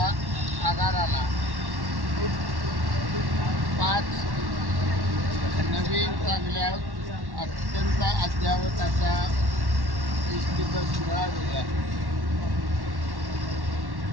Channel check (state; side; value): late; left; 1.1 ms